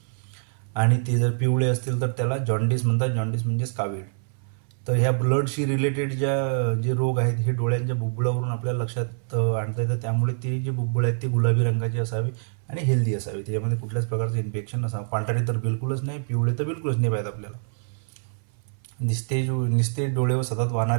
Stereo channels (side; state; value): left; silent; 59 dB below the other